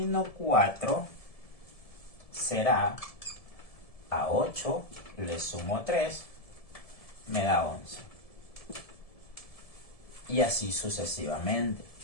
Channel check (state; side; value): late; right; 1.7 ms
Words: 4 será a 8, le sumo 3, me da 11. Y así sucesivamente.